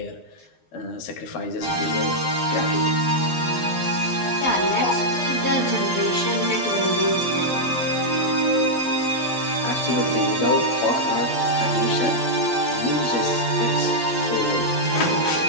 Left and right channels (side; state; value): right; late; 12 ms